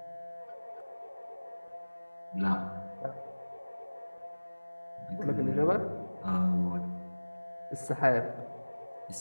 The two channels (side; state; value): both; inverted; correlation -1.00